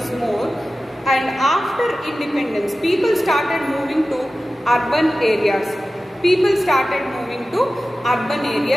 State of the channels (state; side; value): normal; both; correlation 0.95